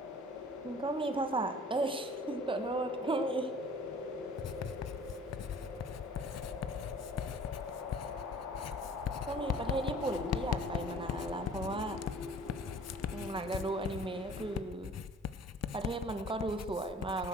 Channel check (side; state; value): both; normal; correlation 0.49